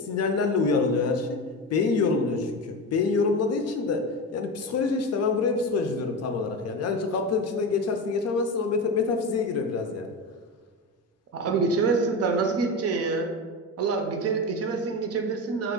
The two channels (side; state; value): both; normal; correlation 0.22